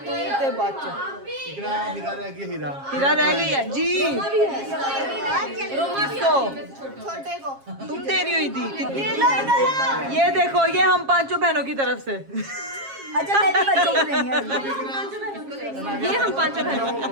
ते बच्चे हीरा रह गया हीरा। हीरा रह गई है जी। किसको? छोटे को तुम दे रही हो ईदी कितनी? ये देखो, ये हम 5 बहनों की तरफ से। अच्छा मेरे बच्चों को नहीं है। ये हम 5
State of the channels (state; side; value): late; left; 7.4 ms